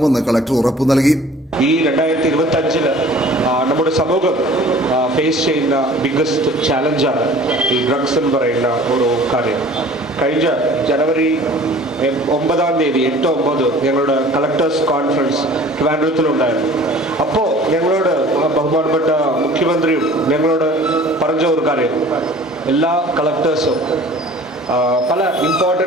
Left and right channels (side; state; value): both; normal; correlation 0.47